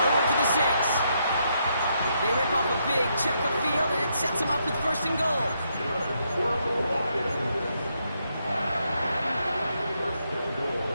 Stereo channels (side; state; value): both; inverted; correlation -0.77